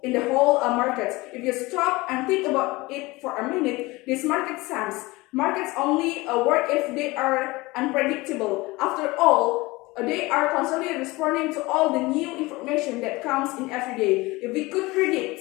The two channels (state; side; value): quieter; right; 22.0 dB